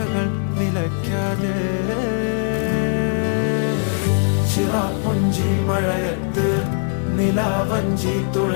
നിലയ്ക്കാതെ, ചിറാപ്പുഞ്ചി മഴയത്ത് നിലാവഞ്ചി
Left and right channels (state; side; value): silent; right; 61 dB below the other